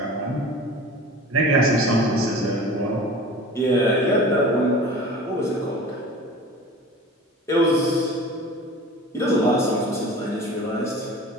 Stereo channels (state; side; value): normal; both; correlation 0.39